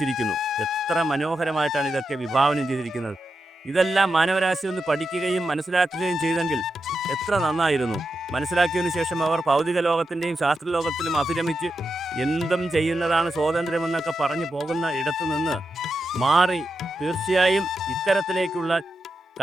എത്ര മനോഹരമായിട്ടാണ് ഇതൊക്കെ വിഭാവനം ചെയ്തിരിക്കുന്നത്. ഇതെല്ലാം മാനവരാശി ഒന്ന് പഠിക്കുകയും മനസ്സിലാക്കുകയും ചെയ്തെങ്കിൽ എത്ര നന്നായിരുന്നു. മനസ്സിലാക്കിയതിനു ശേഷം അവർ ഭൗതിക ലോകത്തിൻ്റെയും ശാസ്ത്രലോകത്തിലും അഭിരമിച്ച് എന്തും ചെയ്യുന്നതാണ് സ്വാതന്ത്ര്യമെന്നൊക്കെ പറഞ്ഞു പോകുന്ന ഇടത്തു നിന്ന് മാറി തീർച്ചയായും ഇത്തരത്തിലേക്കുള്ള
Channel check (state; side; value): normal; both; correlation 0.87